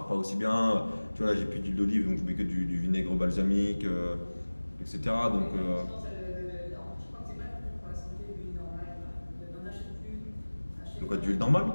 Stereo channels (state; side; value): inverted; both; correlation -1.00